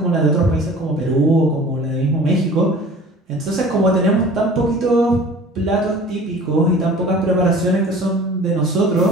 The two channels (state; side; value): normal; both; correlation 0.44